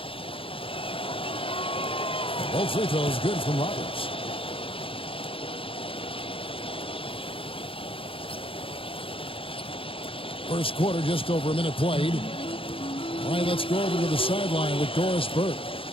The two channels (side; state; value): right; late; 0.26 ms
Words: Both free throws good from Roberts. First quarter, just over a minute played. All right, let's go over to the sideline with Doris Burke.